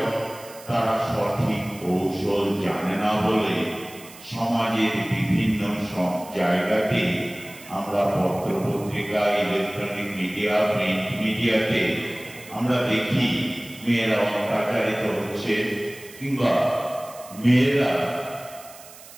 তারা সঠিক কৌশল জানে না বলে সমাজের বিভিন্ন জায়গাতে আমরা পত্রপত্রিকা, ইলেকট্রনিক মিডিয়া, প্রিন্ট মিডিয়াতে আমরা দেখি মেয়েরা অত্যাচারিত হচ্ছে কিংবা মেয়েরা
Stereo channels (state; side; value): noise; right; hiss, 19 dB below the sound